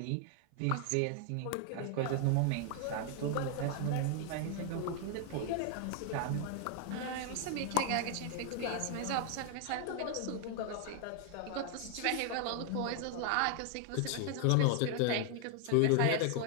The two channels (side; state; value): both; different; correlation 0.00